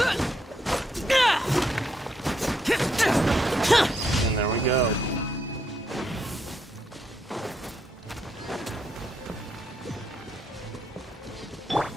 And there we go.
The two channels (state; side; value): normal; both; correlation 0.77